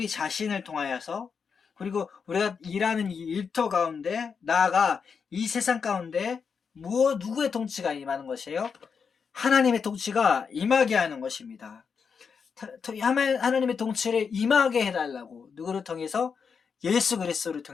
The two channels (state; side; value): quieter; right; 6.0 dB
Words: 자신을 통하여서, 그리고 우리가 일하는 이 일터 가운데, 나아가 이 세상 가운데 누구의 통치가 임하는 것이에요? 하나님의 통치가 임하게 하는 것입니다. 하나님의 통치를 임하게 해달라고, 누구를 통해서? 예수 그리스도를